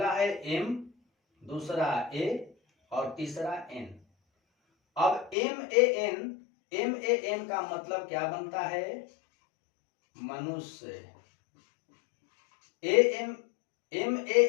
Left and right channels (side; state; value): right; drops out; at 5.4 s